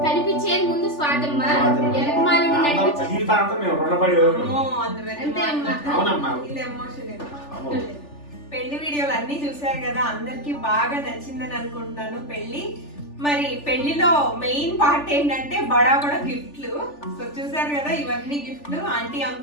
కనిపించేది ముందు స్వాతమ్మ, జీవితాంతం మేము రుణపడి అవునమ్మా. పెళ్లి వీడియోలు అన్ని చూసారు కదా, అందరికి బాగా నచ్చిందని అనుకుంటున్నాను పెళ్లి. మరి పెళ్లిలో మెయిన్ పార్ట్ ఏంటంటే బడా బడా గిఫ్ట్లు. సో చూసారు కదా, ఇవన్నీ గిఫ్ట్లు ఆంటీ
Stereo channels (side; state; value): right; late; 3.4 ms